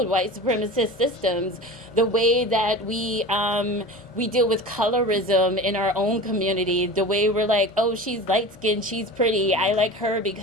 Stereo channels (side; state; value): both; normal; correlation 0.34